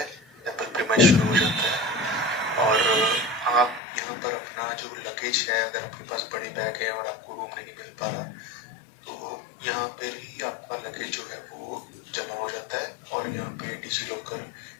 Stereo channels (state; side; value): drops out; right; at 3.8 s